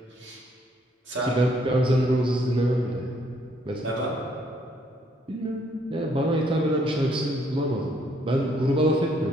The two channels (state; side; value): normal; both; correlation 0.68